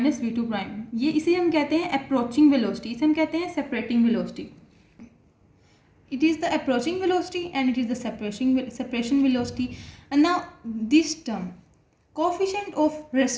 v2 prime. ये इसे हम कहते हैं अप्रोचिंग वेलोसिटी, इसे हम कहते हैं separating velocity. It is the approaching velocity and it is the separation velocity. And now this term, coefficient of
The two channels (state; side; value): identical; both; correlation 1.00